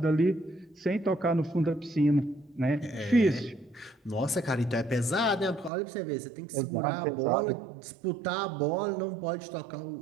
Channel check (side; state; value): left; drops out; at 5.7 s